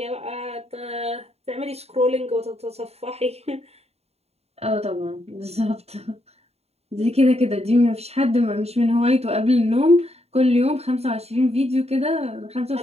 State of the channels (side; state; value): left; late; 0.30 ms